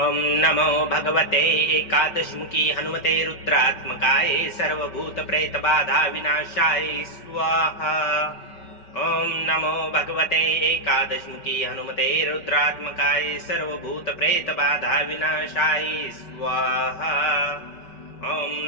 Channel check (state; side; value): late; right; 5.2 ms